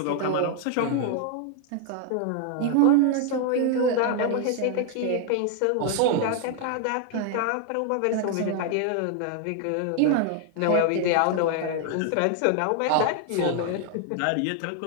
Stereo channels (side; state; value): both; different; correlation 0.00